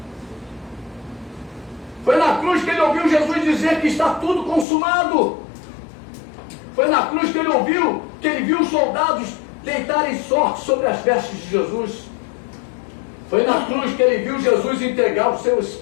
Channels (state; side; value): drops out; right; at 4.7 s